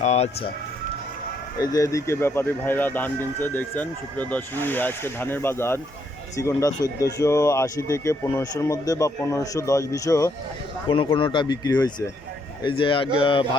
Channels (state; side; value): normal; both; correlation 0.73